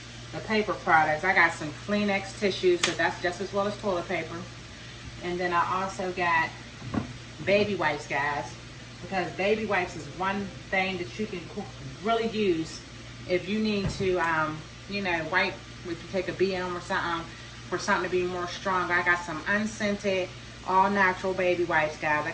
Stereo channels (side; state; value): both; identical; correlation 1.00